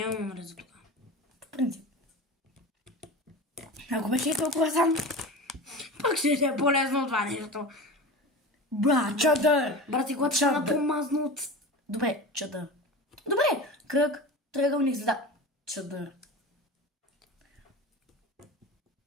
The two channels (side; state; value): both; normal; correlation 0.31